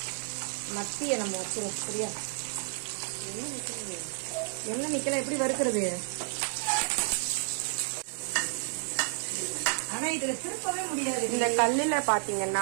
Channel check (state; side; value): silent; left; digital silence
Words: மத்திய நம்ம வச்சிருவோம். சரியா? என்ன நிக்கல, எப்படி வறுக்கிறது? ஆனா இதுல திருப்பவே முடியாது. இந்த கல்லுல